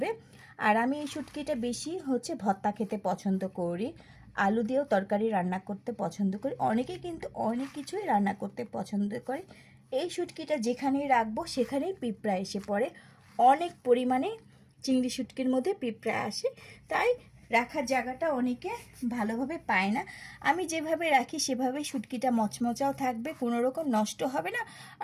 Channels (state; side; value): identical; both; correlation 1.00